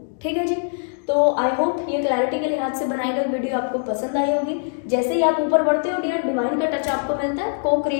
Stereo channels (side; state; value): right; silent; digital silence